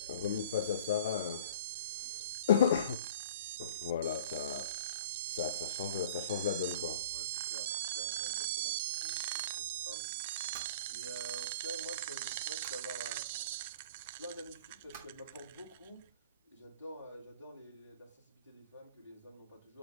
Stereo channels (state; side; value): inverted; both; correlation -0.44